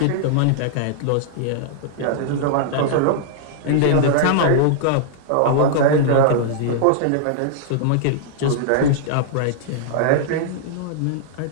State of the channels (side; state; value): both; different; correlation -0.01